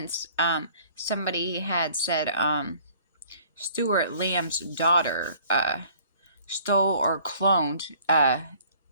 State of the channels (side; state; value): both; inverted; correlation -0.55